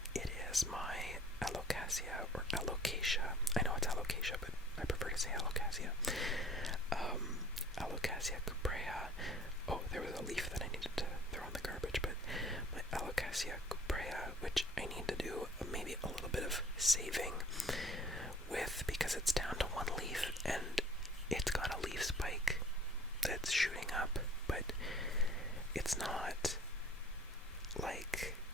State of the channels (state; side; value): normal; both; correlation 0.50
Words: it is my Alocasia, or Alocasia. I know it's Alocasia, but I prefer to say Alocasia. Alocasia cuprea. Oh, there was a leaf that I needed to throw in the garbage, but my Alocasia cuprea, which I need to do maybe a little bit of saving with, because it's down to one leaf, and it's got a leaf spike that's shooting up, but it's not like